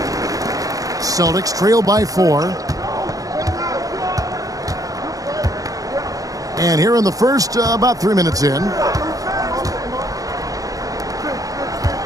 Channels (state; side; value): late; left; 0.17 ms